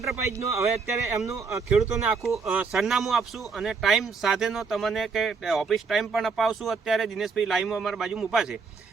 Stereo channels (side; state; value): left; quieter; 5.0 dB